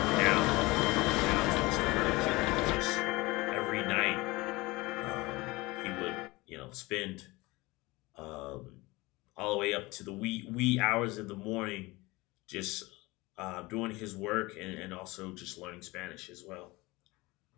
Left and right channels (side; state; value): right; quieter; 22.1 dB